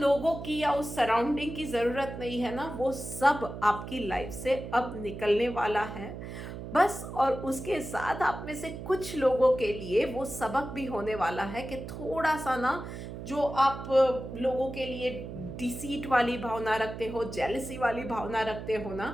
की या उस सराउंडिंग की ज़रूरत नहीं है ना, वो सब आपकी लाइफ से अब निकलने वाला है बस। और उसके साथ आप में से कुछ लोगों के लिए वो सबक भी होने वाला है कि थोड़ा सा ना, जो आप लोगों के लिए डिसीट वाली भावना रखते हो, जेलसी वाली भावना रखते हो ना,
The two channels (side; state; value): right; noise; hum, 9 dB below the sound